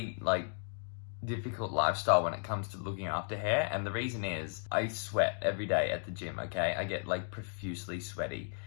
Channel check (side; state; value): right; silent; 55 dB below the other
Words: difficult lifestyle when it comes to looking after hair, and the reason is I sweat every day at the gym, okay? I get profusely sweaty,